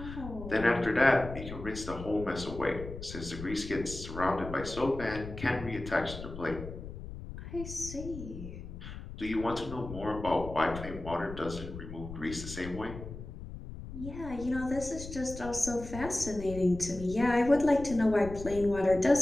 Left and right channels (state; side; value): noise; left; rumble, 11 dB below the sound